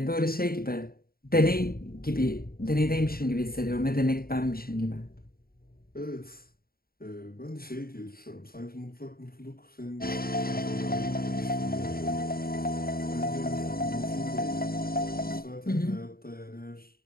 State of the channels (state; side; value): late; right; 0.43 ms